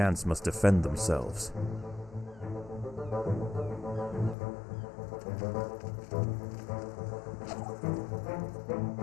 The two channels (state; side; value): drops out; right; at 4.4 s